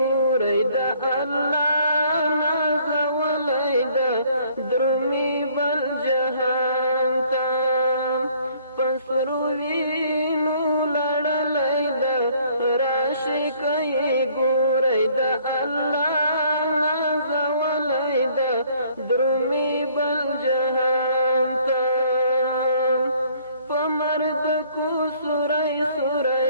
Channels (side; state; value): both; inverted; correlation -0.61